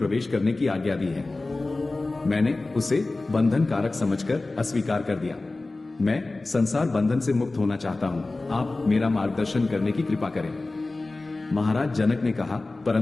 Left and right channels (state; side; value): quieter; right; 3.2 dB